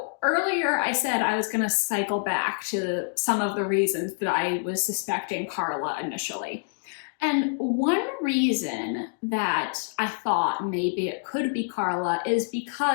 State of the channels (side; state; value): right; silent; digital silence